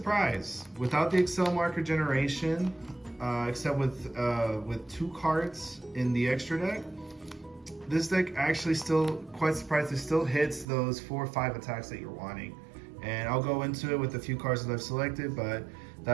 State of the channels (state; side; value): drops out; left; at 10.7 s